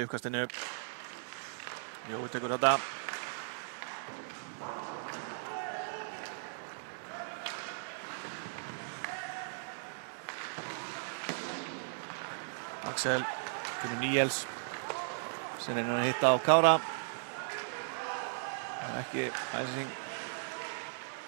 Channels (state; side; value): silent; left; digital silence